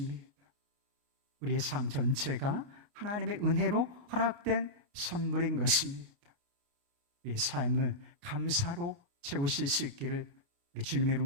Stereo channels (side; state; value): left; late; 30 ms